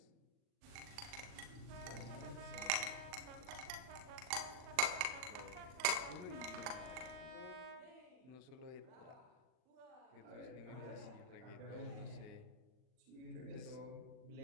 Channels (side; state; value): left; late; 39 ms